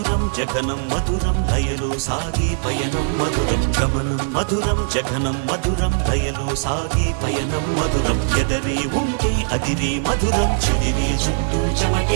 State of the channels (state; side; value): silent; left; digital silence